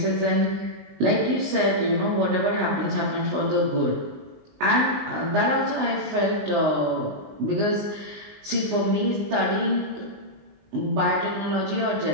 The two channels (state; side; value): late; left; 19 ms